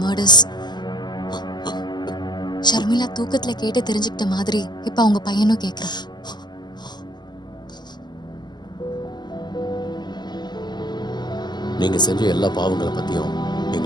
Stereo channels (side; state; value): right; late; 0.21 ms